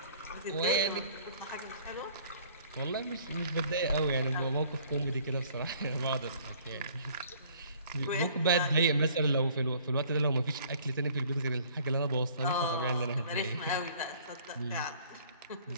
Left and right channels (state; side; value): inverted; both; correlation -0.55